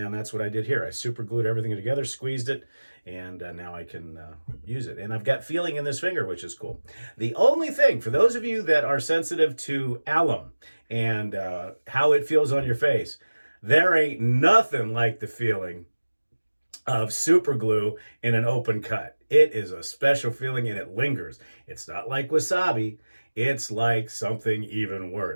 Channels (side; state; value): both; inverted; correlation -1.00